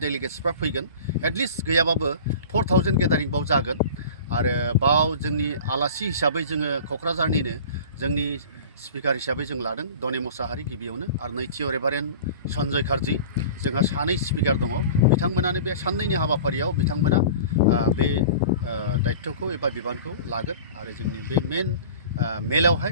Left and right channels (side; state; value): both; inverted; correlation -0.39